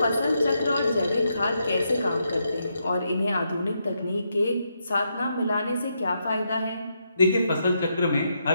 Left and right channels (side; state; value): both; inverted; correlation -0.81